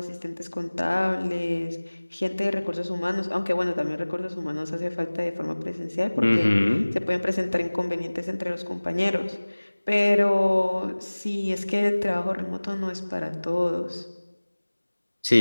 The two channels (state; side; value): inverted; both; correlation -1.00